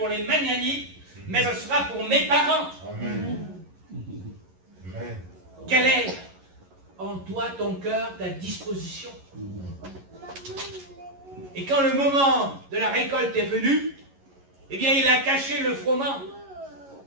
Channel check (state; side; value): late; left; 11 ms